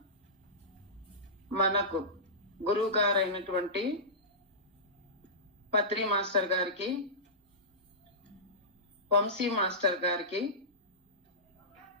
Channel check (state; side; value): normal; both; correlation -0.19